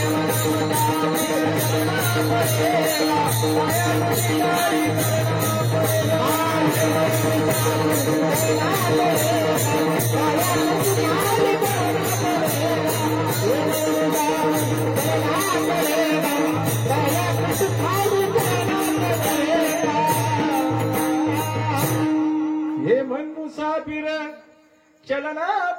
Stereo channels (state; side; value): identical; both; correlation 1.00